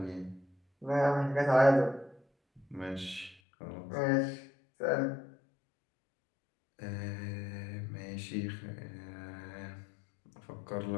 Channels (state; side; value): drops out; right; at 3.4 s